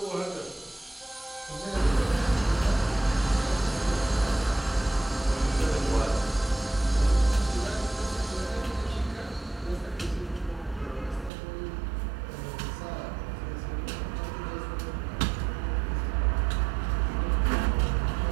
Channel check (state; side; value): drops out; left; at 11.3 s